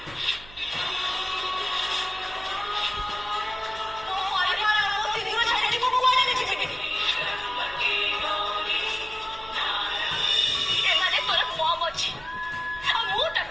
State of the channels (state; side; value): noise; right; hum, 20 dB below the sound